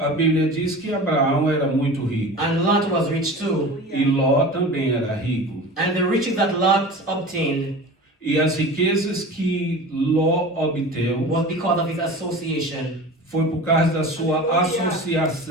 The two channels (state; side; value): normal; both; correlation 0.35